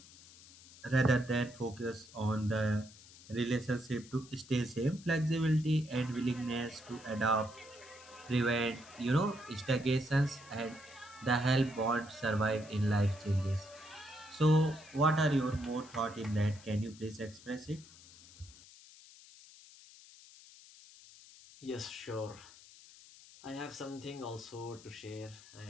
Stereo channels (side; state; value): left; noise; hiss, 21 dB below the sound